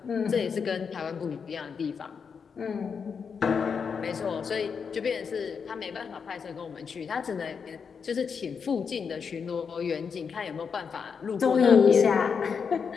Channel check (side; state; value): right; quieter; 6.1 dB